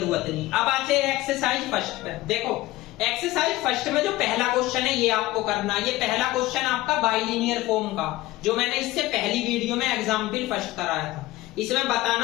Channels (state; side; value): quieter; right; 17.6 dB